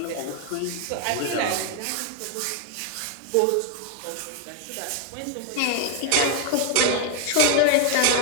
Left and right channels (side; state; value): both; different; correlation 0.00